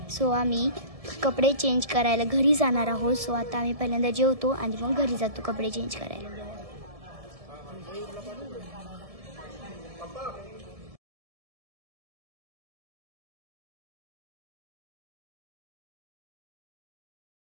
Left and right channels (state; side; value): late; left; 1.7 ms